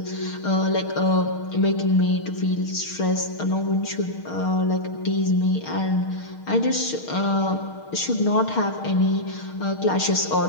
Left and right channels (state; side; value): late; right; 6.5 ms